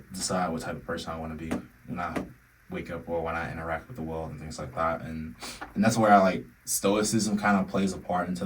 decide what type of person I want to be when I wake up or when I interact with the world and things like that. And that's where I like Stoicism kind of plays a part into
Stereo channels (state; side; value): identical; both; correlation 1.00